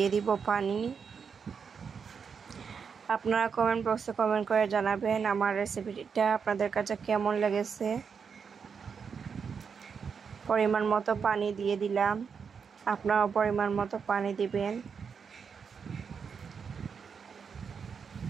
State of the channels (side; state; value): left; quieter; 6.2 dB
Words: দিব পানি। আপনারা কমেন্ট বক্সে কমেন্ট করে জানাবেন আমার রেসিপিটা আপনাদের কাছে কেমন লেগেছে। পরিমাণ মতো পানি দিয়ে দিলাম, আপনারাও পরিমাণ মতো পানি দিবেন।